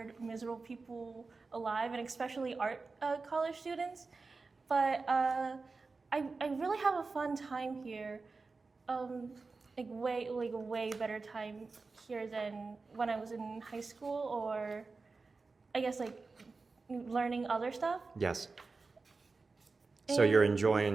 miserable people alive, and especially art college students. But I really have a fun time here. Like a way better time here than when I was in high school, or I guess like learning other stuff. Yes. So you're And-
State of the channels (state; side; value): quieter; left; 4.0 dB